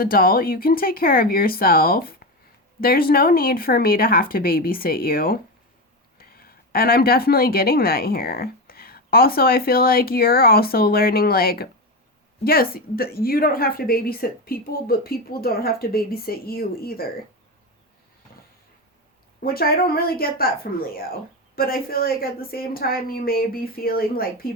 You can take care of yourself. There's no need for me to have to babysit you. And I'm definitely getting that here. Also, I feel like you're also learning, like, yes, you don't have to babysit people, but people don't have to babysit you either. Which I don't really get that from Leo. But I feel like at the same time, you may be feeling like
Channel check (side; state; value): both; normal; correlation 0.16